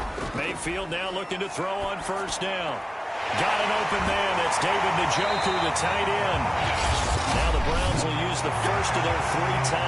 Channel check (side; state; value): both; identical; correlation 1.00